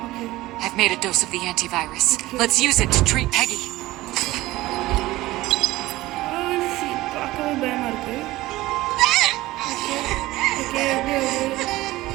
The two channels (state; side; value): quieter; left; 17.8 dB